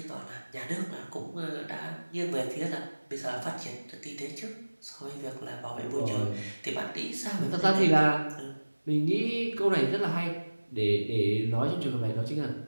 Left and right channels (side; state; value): both; inverted; correlation -1.00